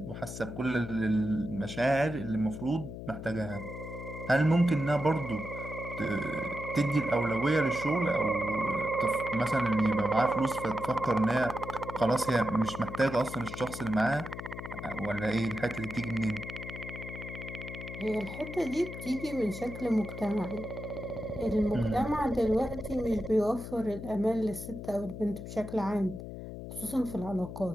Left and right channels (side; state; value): left; noise; hum, 9 dB below the sound